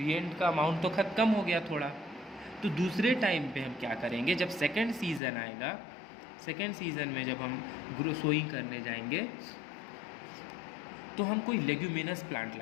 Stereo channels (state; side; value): drops out; right; at 5.2 s